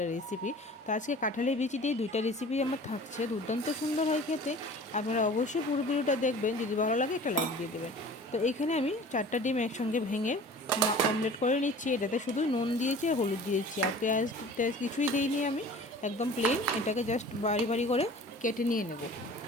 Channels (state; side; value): normal; both; correlation 0.43